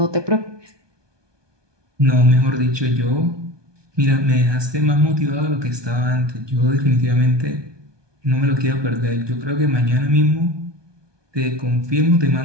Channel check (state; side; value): late; left; 1.2 ms